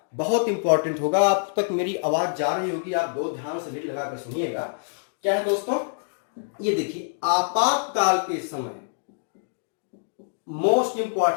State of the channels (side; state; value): right; silent; digital silence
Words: बहुत इंपॉर्टेंट होगा। आप तक मेरी आवाज जा रही होगी, आप दो ध्यान से लीड लगाकर सुनिएगा। क्या है दोस्तों, ये देखिए, आपातकाल के समय, मोस्ट